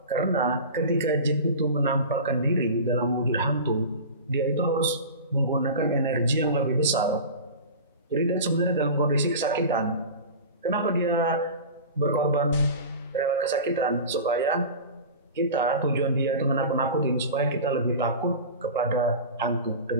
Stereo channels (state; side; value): inverted; both; correlation -0.32